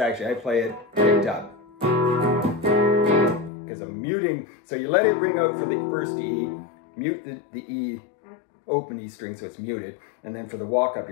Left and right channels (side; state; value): right; drops out; at 3.5 s